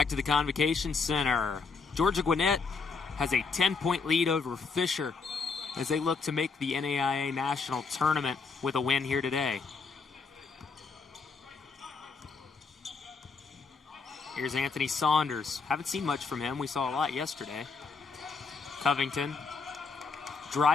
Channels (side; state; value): right; quieter; 4.7 dB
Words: to the Convocation Center. Georgia Gwinnett has a 10-point lead over Fisher as they look to make the NAIA National Tournament with a win here today. Here's Anthony Saunders. Haven't seen much from him. We saw a lot yesterday. Covington